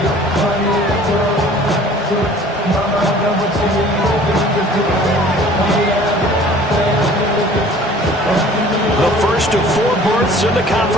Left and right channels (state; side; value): normal; both; correlation 0.49